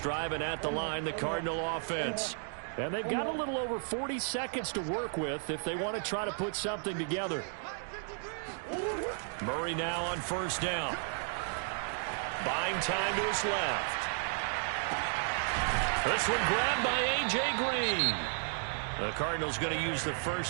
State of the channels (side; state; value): left; silent; 55 dB below the other